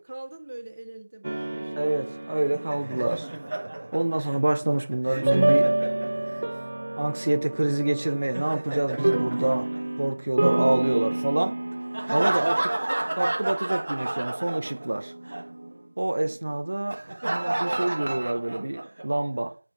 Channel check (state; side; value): inverted; both; correlation -1.00